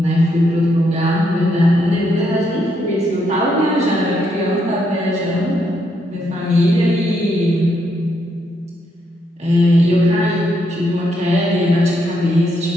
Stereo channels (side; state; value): both; normal; correlation 0.77